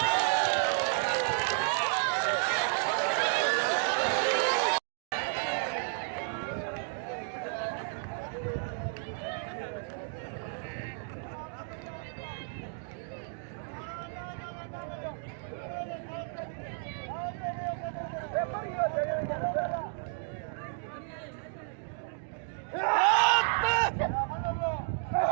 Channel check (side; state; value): left; silent; 56 dB below the other